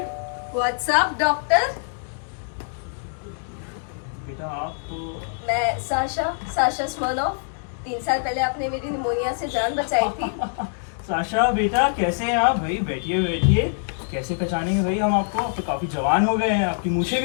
What's up, doctor? बेटा आप तो... मैं साशा स्मर्नोव। 3 साल पहले आपने मेरी निमोनिया से जान बचाई थी। साशा बेटा कैसे हैं आप? भाई बैठिए बैठिए। कैसे पहचानेंगे भाई हम आपको? अब तो काफी जवान हो गए हैं, आपकी मूछें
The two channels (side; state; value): right; silent; digital silence